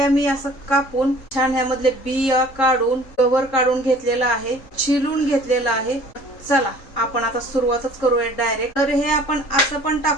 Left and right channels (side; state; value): right; late; 3.7 ms